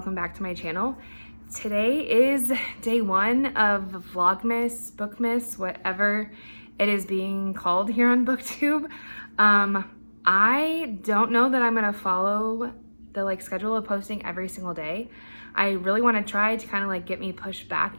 back to my channel. Today is day one of Vlogmas, Bookmas, whatever it is being called here on BookTube. I don't know that I'm gonna follow the schedule of posting every single day. I really want to try to kind of get me pushed back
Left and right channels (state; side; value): inverted; both; correlation -1.00